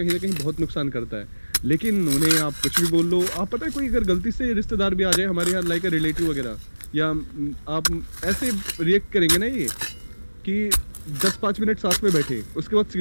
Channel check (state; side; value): inverted; both; correlation -1.00